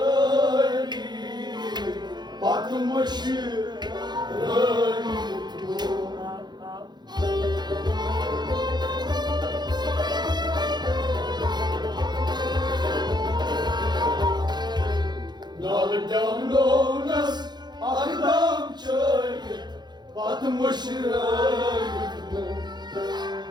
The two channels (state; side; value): late; left; 0.21 ms